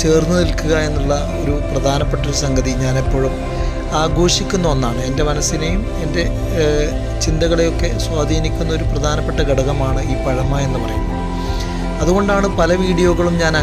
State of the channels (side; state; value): both; identical; correlation 1.00